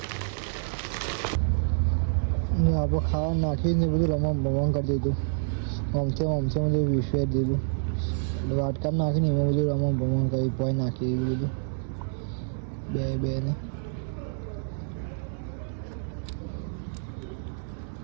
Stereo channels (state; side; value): silent; left; digital silence